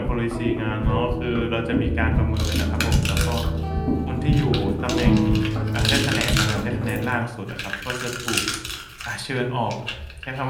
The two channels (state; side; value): identical; both; correlation 1.00